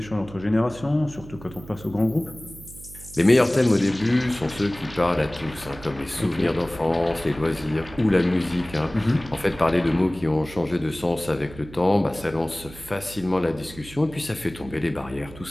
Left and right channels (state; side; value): noise; right; hum, 17 dB below the sound